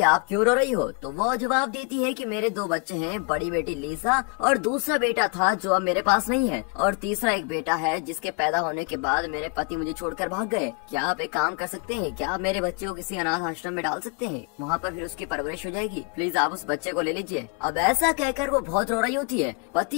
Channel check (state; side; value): quieter; right; 35.1 dB